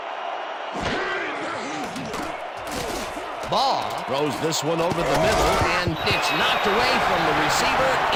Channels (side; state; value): both; identical; correlation 1.00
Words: Ball throws this one over the middle, and it's knocked away from the receiver,